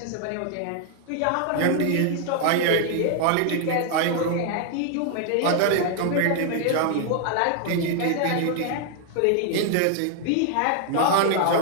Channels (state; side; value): different; both; correlation 0.00